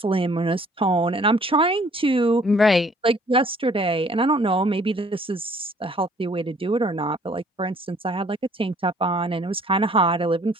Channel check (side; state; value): both; normal; correlation 0.58